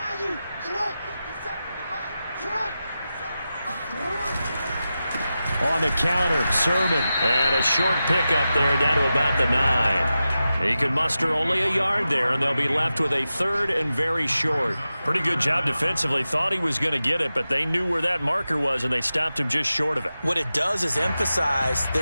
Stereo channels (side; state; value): both; inverted; correlation -0.92